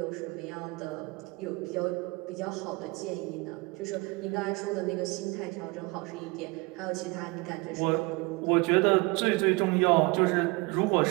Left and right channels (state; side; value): quieter; left; 25.8 dB